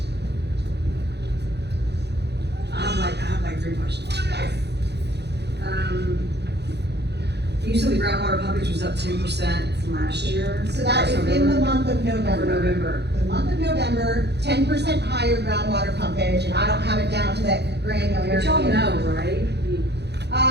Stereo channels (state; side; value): late; left; 0.49 ms